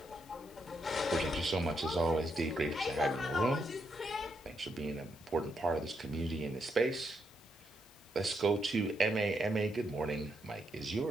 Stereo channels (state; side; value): normal; both; correlation 0.79